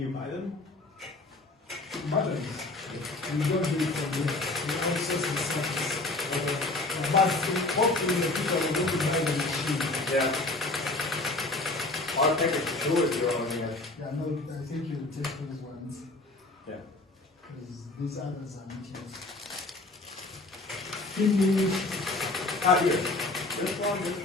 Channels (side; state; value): right; quieter; 3.0 dB